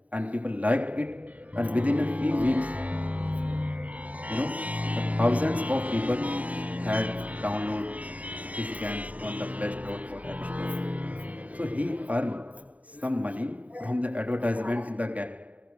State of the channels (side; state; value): left; late; 0.070 ms